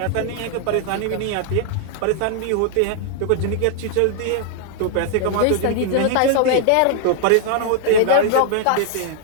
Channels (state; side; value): different; both; correlation 0.00